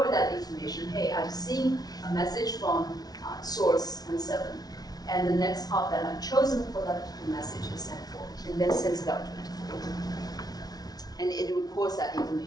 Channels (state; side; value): late; right; 0.19 ms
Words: that information. Hey, I've seen a message from source N7, and the next hop that I've chosen for that message is N4, and then sends it out to N4. And it records that